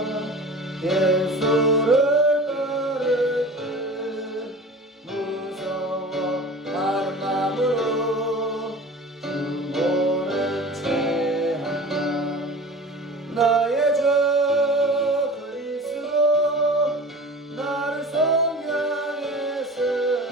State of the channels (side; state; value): both; normal; correlation 0.38